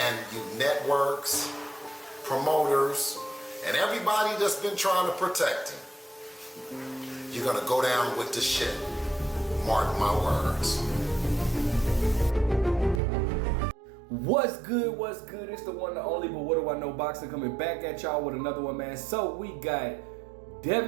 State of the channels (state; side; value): drops out; left; at 13.0 s